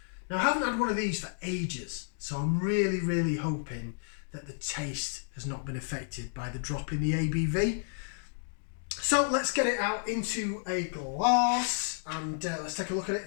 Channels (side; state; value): right; silent; digital silence